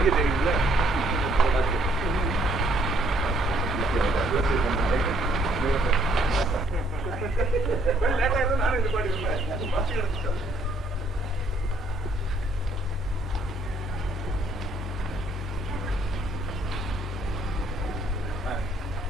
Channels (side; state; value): both; normal; correlation 0.65